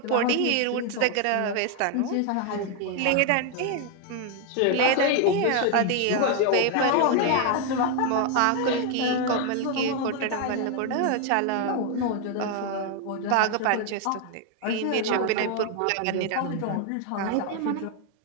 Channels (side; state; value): both; different; correlation 0.01